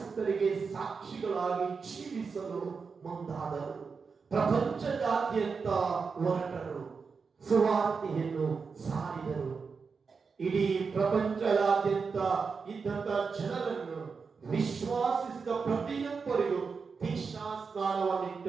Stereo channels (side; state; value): left; quieter; 5.2 dB